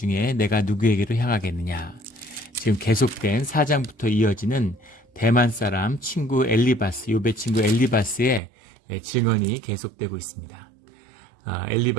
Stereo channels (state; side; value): drops out; left; at 8.4 s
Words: 내가 누구에게로 향하겠느냐? 지금 계속된 4장부터 이어지는 대만 사람 친구 엘리바스, 욥의 친구 엘리바스의 증언이 계속되고 있습니다.